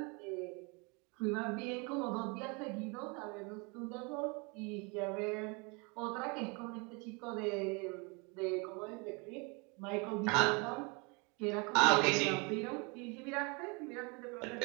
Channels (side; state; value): left; quieter; 30.7 dB